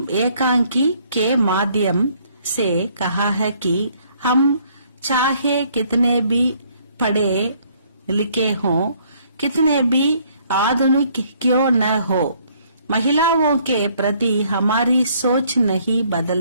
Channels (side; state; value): both; inverted; correlation -0.64